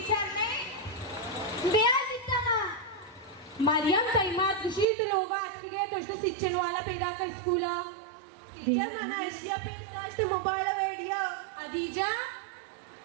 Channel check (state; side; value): drops out; left; at 4.9 s